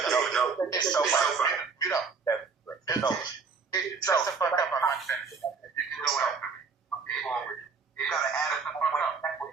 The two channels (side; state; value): left; quieter; 5.1 dB